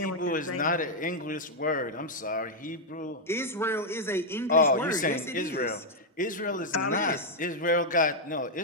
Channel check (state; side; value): normal; both; correlation -0.02